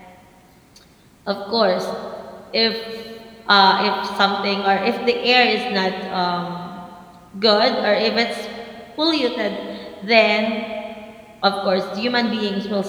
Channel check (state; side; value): identical; both; correlation 1.00